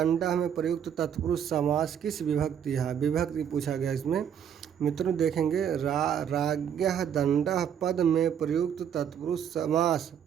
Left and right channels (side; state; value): left; quieter; 8.6 dB